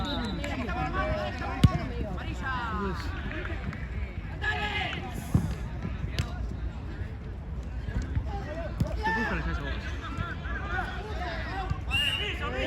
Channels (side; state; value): both; identical; correlation 1.00